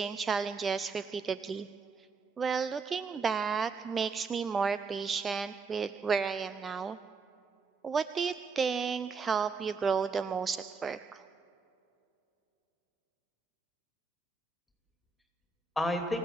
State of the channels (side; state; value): left; quieter; 4.8 dB